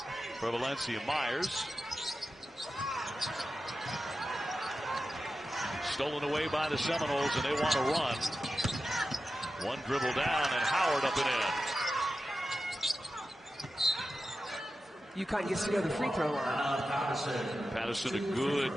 for Valencia Myers. Stolen away by the Seminoles, and they want to run. One dribble down, and Howard up and in. UConn gets to go to the free throw line. Patterson, a good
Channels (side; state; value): both; normal; correlation 0.92